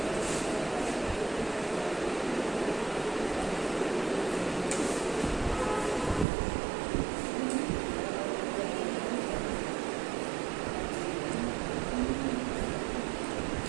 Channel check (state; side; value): drops out; left; at 6.2 s